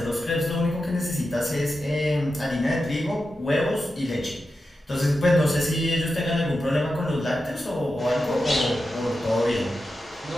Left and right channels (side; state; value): both; normal; correlation 0.90